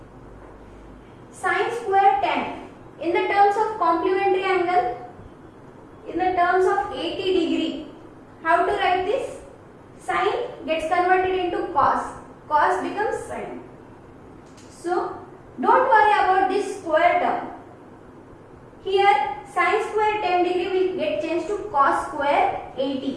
Sin square 10 in the terms of complementary angle, in the terms of 80 degree. How to write this? Sin gets converted into cos. Cos becomes sin. So don't worry about this square term. Here sin square 10 degree will get changed to cos square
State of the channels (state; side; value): identical; both; correlation 1.00